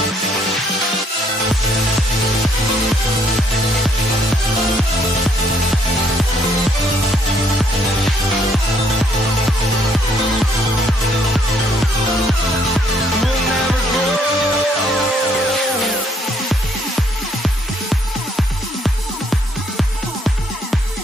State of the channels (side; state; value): both; normal; correlation 0.67